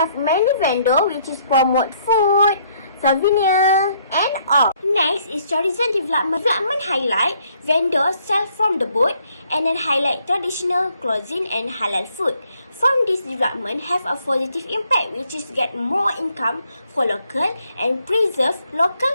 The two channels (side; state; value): both; inverted; correlation -0.67